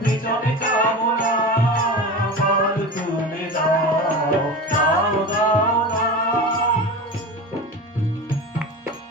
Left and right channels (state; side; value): normal; both; correlation 0.29